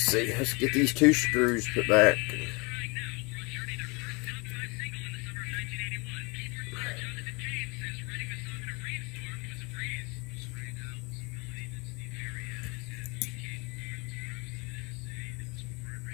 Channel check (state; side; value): quieter; right; 28.8 dB